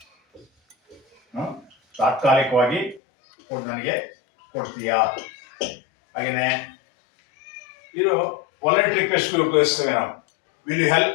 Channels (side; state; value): right; drops out; at 3.0 s